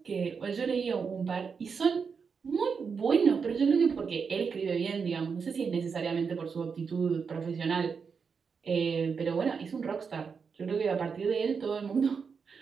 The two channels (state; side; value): quieter; left; 5.8 dB